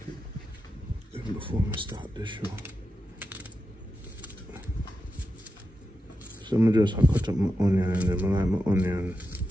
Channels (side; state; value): both; normal; correlation 0.89